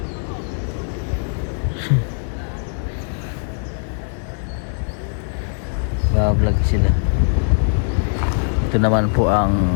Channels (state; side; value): silent; right; digital silence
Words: Vlog sila. Ito naman po ang